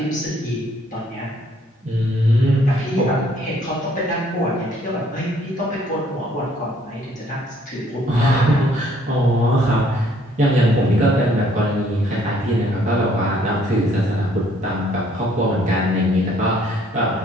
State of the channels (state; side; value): normal; both; correlation 0.63